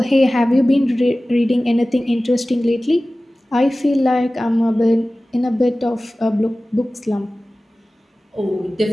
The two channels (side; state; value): both; normal; correlation 0.97